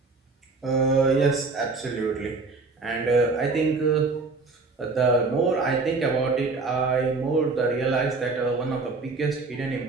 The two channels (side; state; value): left; quieter; 4.0 dB